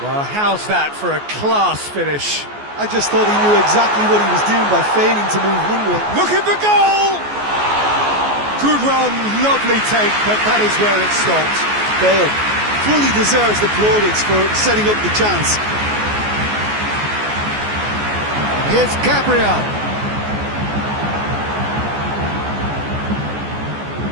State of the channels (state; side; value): late; left; 14 ms